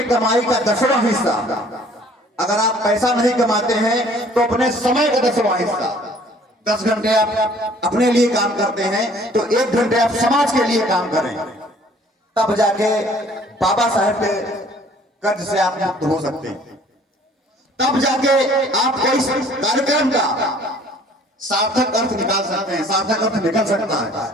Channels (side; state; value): both; normal; correlation 0.55